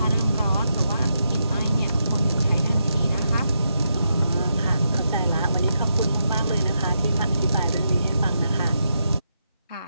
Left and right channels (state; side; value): inverted; both; correlation -0.83